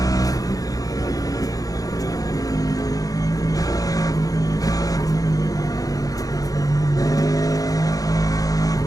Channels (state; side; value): late; right; 0.17 ms